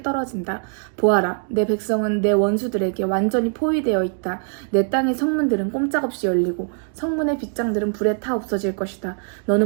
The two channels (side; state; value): left; silent; 56 dB below the other